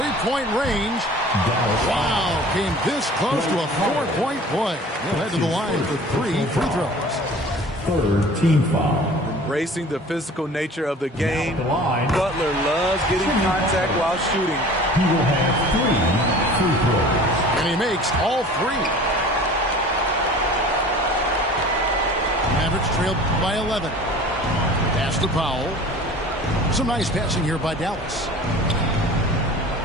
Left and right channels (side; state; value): both; normal; correlation 0.44